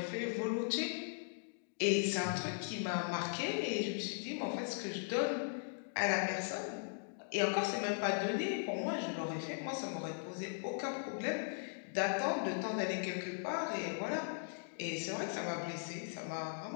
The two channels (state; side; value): silent; right; digital silence